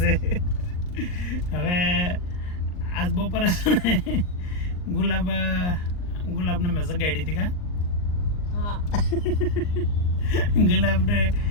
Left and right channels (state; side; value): late; right; 39 ms